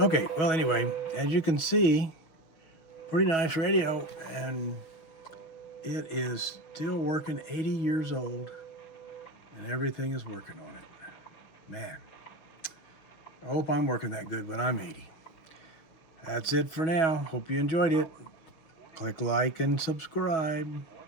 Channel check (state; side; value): late; right; 6.2 ms